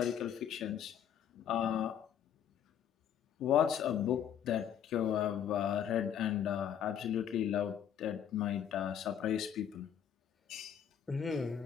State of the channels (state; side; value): quieter; right; 9.1 dB